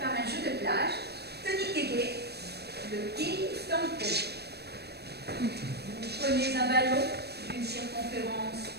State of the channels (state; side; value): late; left; 0.47 ms